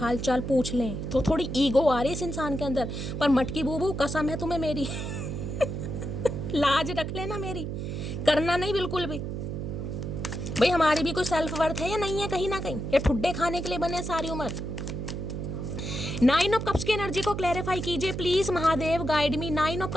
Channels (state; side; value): noise; right; hum, 5 dB below the sound